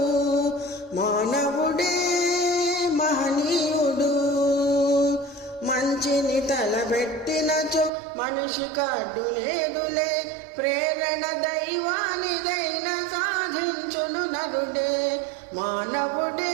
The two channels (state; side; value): drops out; left; at 7.9 s